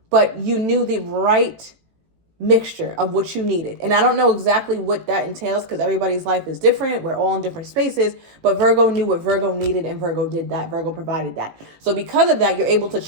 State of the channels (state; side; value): late; left; 18 ms